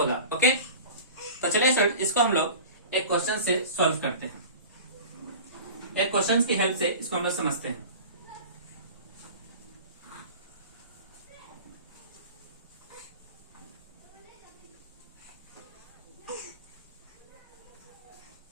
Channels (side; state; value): both; inverted; correlation -0.37